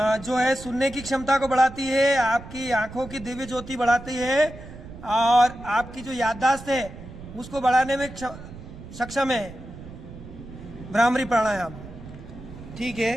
जो है सुनने की क्षमता को बढ़ाती है, आपकी आंखों की दिव्य ज्योति बढ़ाती है और आपकी जो याददाश्त है उसको बढ़ाने में सक्षम है भ्रामरी प्राणायाम। ठीक है,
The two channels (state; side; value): noise; right; rumble, 15 dB below the sound